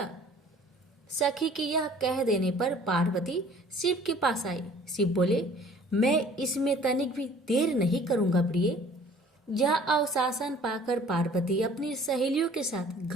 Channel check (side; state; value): both; normal; correlation 0.52